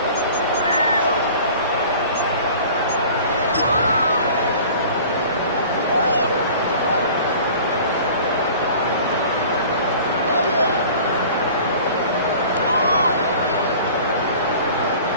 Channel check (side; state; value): both; inverted; correlation -0.44